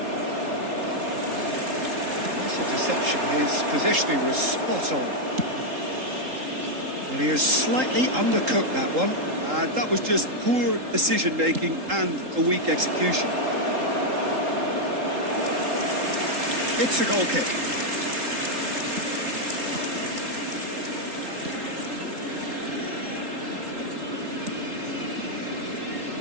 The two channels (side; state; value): left; late; 3.8 ms